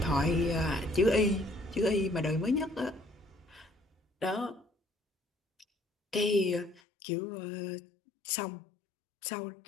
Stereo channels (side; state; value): right; drops out; at 6.8 s